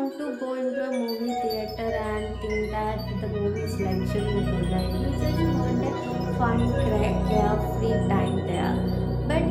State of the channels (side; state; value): both; identical; correlation 1.00